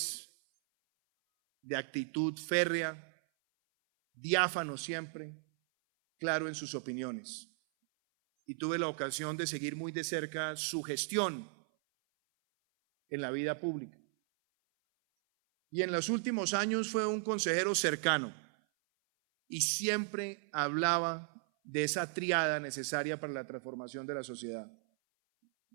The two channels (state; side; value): silent; left; 54 dB below the other